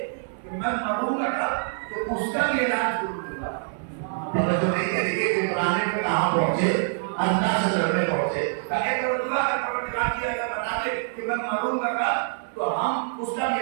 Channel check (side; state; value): left; silent; 58 dB below the other